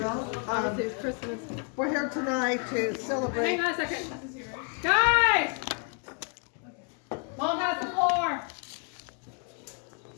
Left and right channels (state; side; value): quieter; right; 38.7 dB